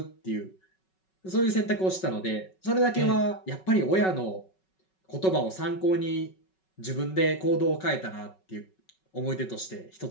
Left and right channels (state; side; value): late; right; 5.3 ms